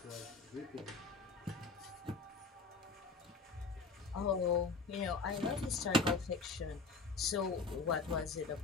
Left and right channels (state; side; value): quieter; right; 4.1 dB